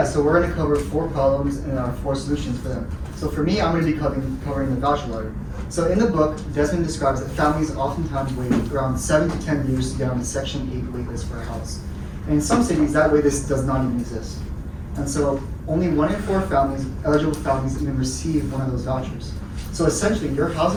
so we're going to cover 4 problems and 4 solutions for them. So for me, I'm going to be covering the voucher lottery. So in the book, Desmond describes that families oftentimes wait around 7 to 10 years to get on the Section 8 waitlist for a house. And in some cities, that waitlist does not even exist. And so only 1 in 4 eligible families even receive one of those vouchers. So essentially, your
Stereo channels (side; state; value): both; identical; correlation 1.00